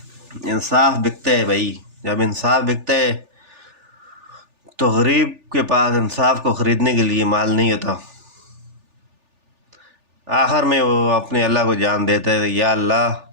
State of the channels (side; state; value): left; late; 3.4 ms